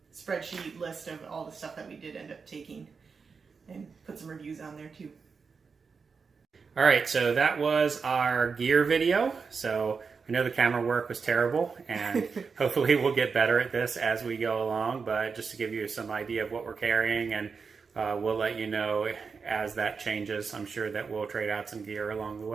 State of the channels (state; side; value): quieter; left; 5.3 dB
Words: spreadsheet list of all the stuff that we did end up taking and put some reviews on there too. All right, so that was our gear video. So I know the camera work was terrible, and hopefully we'll get better at this as we go along, but just to give you some idea of what we're carrying, and we'll let you know as that changes. I'm sure that we'll trade out some gear along the